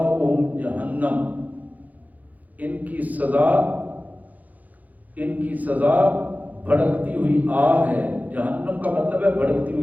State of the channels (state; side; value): late; left; 0.079 ms